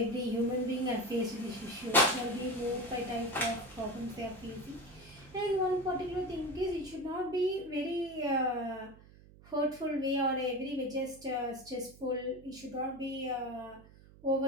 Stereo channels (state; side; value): noise; right; hum, 22 dB below the sound